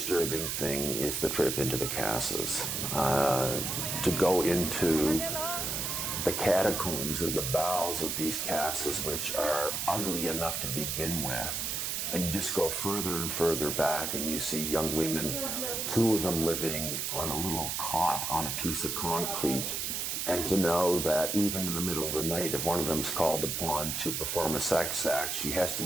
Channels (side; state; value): right; noise; hiss, 1 dB below the sound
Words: thing is the trip into the casas. To go into the catacombs or the bowels of these casas, which are ugly enough to begin with, and you just go further and further back and you see young women, 2 of them living on a little cot on a piece of concrete, and to know that even in the middle of the night, if one of them's called upon to perform a sex act, she has to